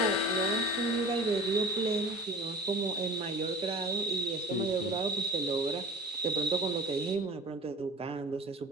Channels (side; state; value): both; normal; correlation 0.38